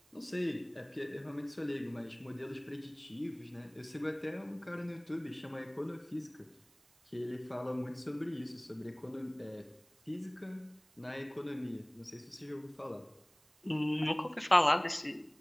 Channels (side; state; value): right; noise; hiss, 29 dB below the sound